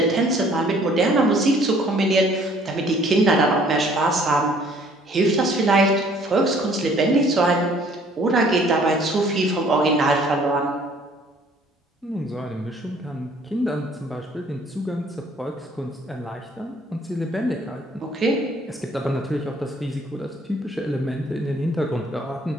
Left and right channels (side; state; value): both; normal; correlation 0.58